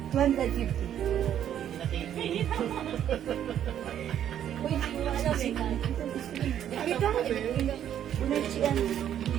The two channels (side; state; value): left; quieter; 10.2 dB